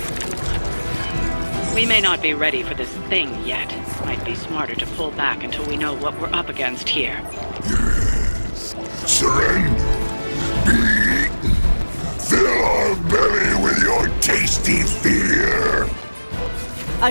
We may not be ready for this thing yet. Might be smarter to pull back until we know what we're up against here. Yes. Surrender. Be eaten. Fill our belly with your tasty fear. I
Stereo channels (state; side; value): inverted; both; correlation -1.00